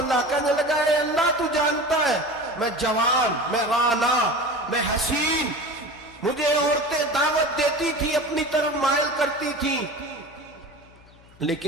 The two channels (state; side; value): noise; left; hum, 26 dB below the sound